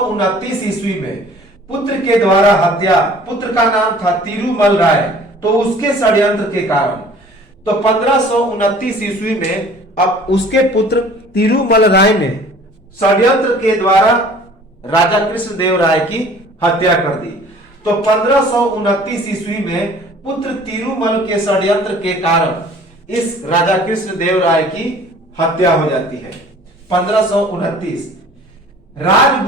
ईस्वी में पुत्र के द्वारा हत्या, पुत्र का नाम था तिरुमल राय, तो उसके षड्यंत्र के कारण, तो 1529 ईस्वी में अब उसके पुत्र तिरुमल राय ने षड्यंत्र के द्वारा राजा कृष्णदेव राय की हत्या कर दी। तो 1529 ईस्वी में पुत्र तिरुमल के षड्यंत्र के कारण इस राजा कृष्णदेव राय की हत्या हो जाती है। 1529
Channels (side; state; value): both; normal; correlation 0.50